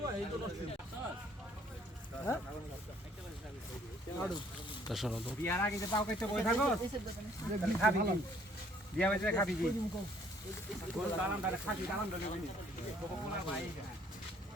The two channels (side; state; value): both; normal; correlation 0.62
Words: এই তো নষ্ট বিয়ার আগে যে পাও কাইতে বই থাকো তাহলে খাবি কি বিয়া হইছে খাবি কি কোন দালাম দারে খাবি দালাম দলে বনি কোলা ভাই